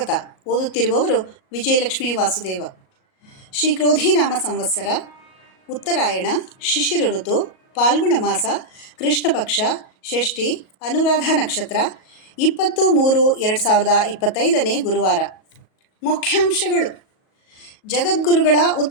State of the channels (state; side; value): late; right; 38 ms